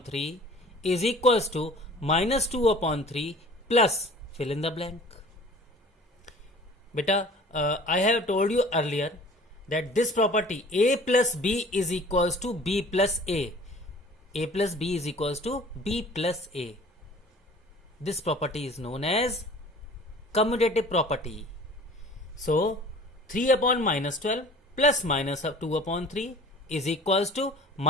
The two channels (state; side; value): normal; both; correlation 0.47